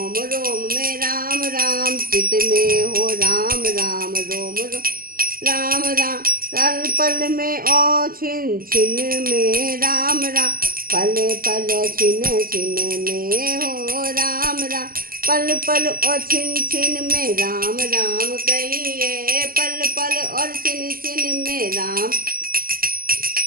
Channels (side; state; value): left; late; 0.42 ms